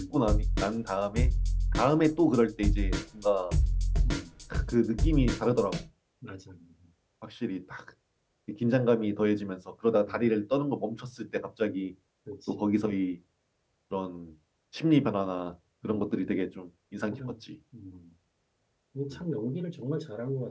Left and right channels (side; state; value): both; identical; correlation 1.00